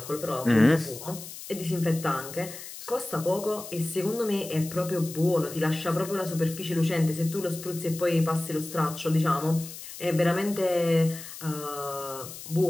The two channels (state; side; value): noise; left; hiss, 12 dB below the sound